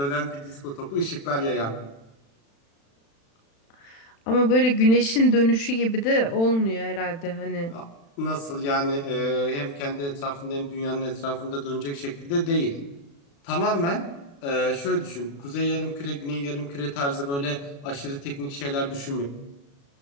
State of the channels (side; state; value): right; late; 36 ms